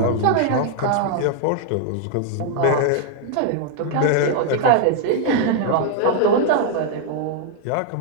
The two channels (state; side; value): different; both; correlation 0.00